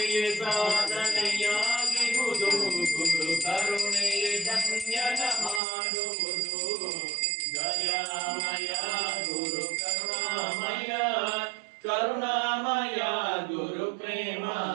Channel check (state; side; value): drops out; left; at 5.6 s